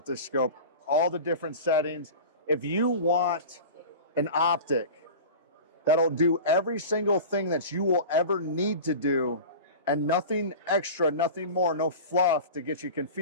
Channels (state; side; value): inverted; both; correlation -0.33